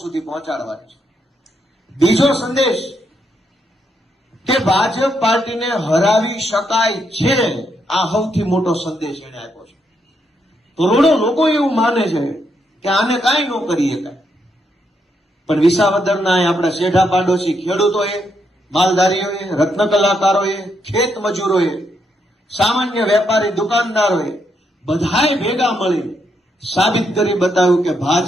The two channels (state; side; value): normal; both; correlation 0.78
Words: સુધી પહોંચાડવાની છે. બીજો સંદેશ કે ભાજપ પાર્ટીને હરાવી શકાય છે, આ સૌથી મોટો સંદેશ એને આપ્યો છે. કરોડો લોકો એવું માને છે કે આને કાંઈ ન કરી શકાય, પણ વિસાવદરના આપણા શેઠા પાડોશી ખેડૂતોએ, માલધારીઓએ, રત્ન કલાકારોએ, ખેત મજૂરોએ, સામાન્ય વેપારી દુકાનદારોએ બધાએ ભેગા મળી સાબિત કરી બતાવ્યું કે